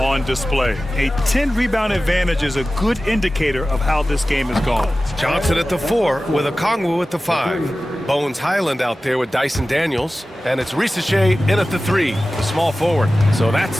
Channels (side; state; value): both; normal; correlation 0.96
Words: display. A 10-rebound advantage is a good indicator of how this game has gone. Johnson at the 4 with Okongwu at the 5. Bones Highland out there with Dyson Daniels. And it's Risache in at the 3, the small forward. So that's